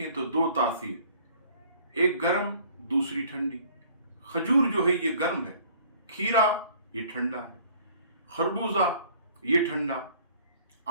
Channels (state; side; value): inverted; both; correlation -0.55